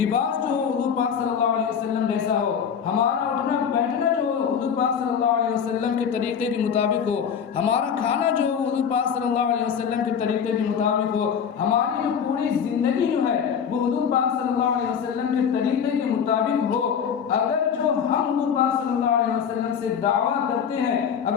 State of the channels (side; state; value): right; quieter; 7.4 dB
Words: جو ہو حضور پاک صلی اللہ علیہ وسلم جیسا ہو، ہمارا اٹھنا بیٹھنا جو ہو حضور پاک صلی اللہ علیہ وسلم کے طریقے کے مطابق ہو، ہمارا کھانا جو ہو حضور پاک صلی اللہ علیہ وسلم کے طریقے کے مطابق ہو، ہماری جو پوری زندگی جو ہے وہ حضور پاک صلی اللہ علیہ وسلم کے طریقے کے مطابق ہو۔ اگر جو ہم حضور پاک صلی اللہ علیہ وسلم سے دعویٰ کرتے ہیں،